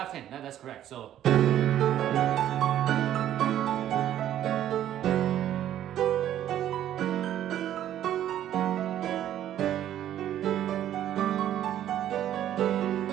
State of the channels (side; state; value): left; quieter; 11.5 dB